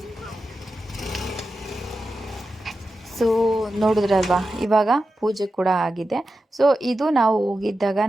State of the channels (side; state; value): both; normal; correlation 0.91